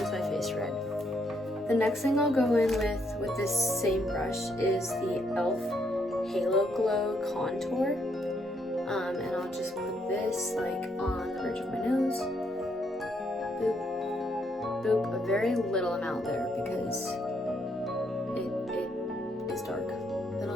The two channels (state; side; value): normal; both; correlation 0.74